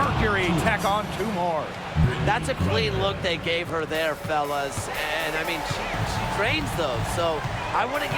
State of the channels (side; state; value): both; identical; correlation 1.00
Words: tack on 2 more. That's a clean look they gave her there, fellas. And, I mean, she trains those, so I wouldn't